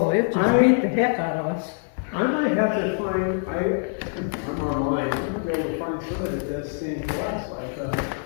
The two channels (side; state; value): right; silent; 62 dB below the other